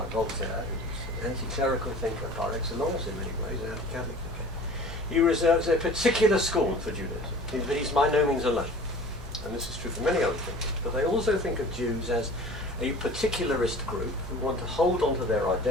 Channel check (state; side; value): normal; both; correlation 0.43